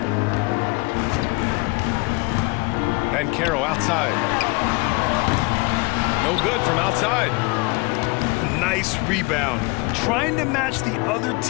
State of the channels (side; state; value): right; quieter; 26.3 dB